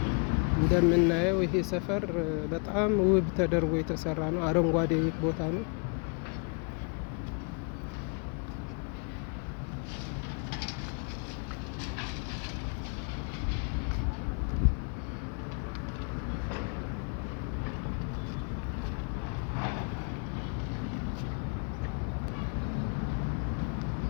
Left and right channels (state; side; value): quieter; right; 37.6 dB